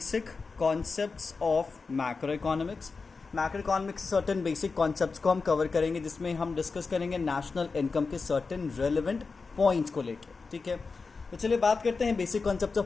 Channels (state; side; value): quieter; right; 4.5 dB